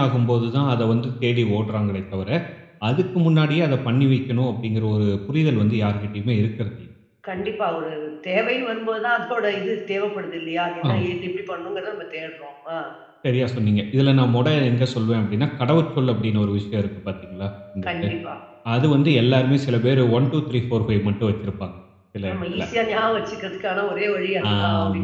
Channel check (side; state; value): both; identical; correlation 1.00